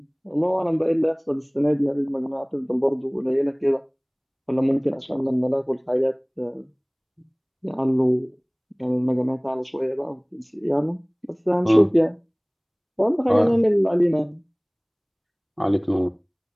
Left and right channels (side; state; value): both; identical; correlation 1.00